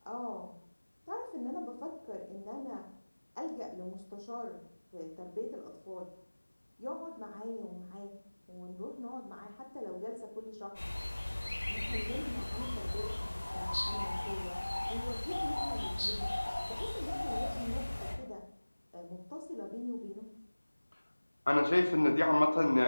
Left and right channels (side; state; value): both; inverted; correlation -1.00